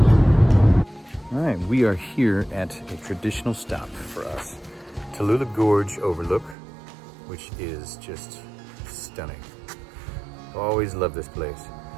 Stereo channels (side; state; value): left; drops out; at 6.6 s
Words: All right, we are here at a traditional stop for us. Tallulah Gorge Overlook, which is just stunning. Always love this place.